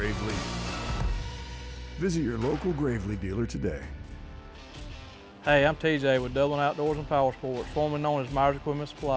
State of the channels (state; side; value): identical; both; correlation 1.00